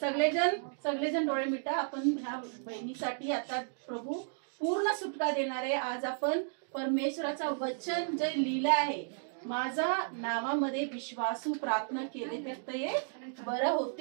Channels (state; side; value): silent; left; digital silence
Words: सगळेजण डोळे मिटा. आपण ह्या बहिणीसाठी आता प्रभू पूर्ण सुटका देणार आहे. आज आपण परमेश्वराचं वचन जे लिहिलं आहे, माझा नावामध्ये विश्वासू प्रार्थना केले तर ते बरं